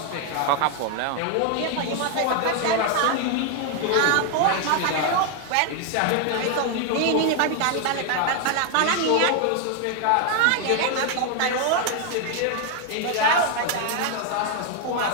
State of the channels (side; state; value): both; different; correlation 0.01